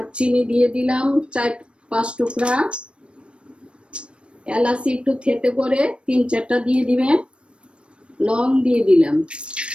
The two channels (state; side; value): late; left; 0.058 ms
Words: দিয়ে দিলাম 4-5 টুকরা, এলাচি একটু থেতে করে 3-4টা দিয়ে দিবেন, লং দিয়ে দিলাম।